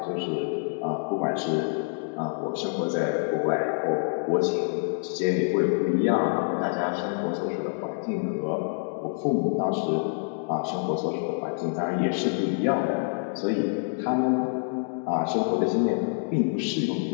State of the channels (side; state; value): right; silent; 60 dB below the other